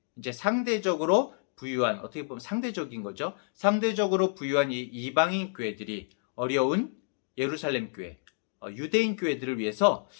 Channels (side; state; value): right; silent; digital silence